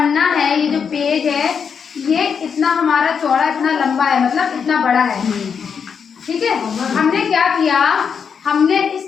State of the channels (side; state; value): right; quieter; 6.6 dB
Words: है, ये जो पेज है, ये इतना हमारा चौड़ा, इतना लंबा है, मतलब इतना बड़ा है। ठीक है, हमने क्या किया, हमने इस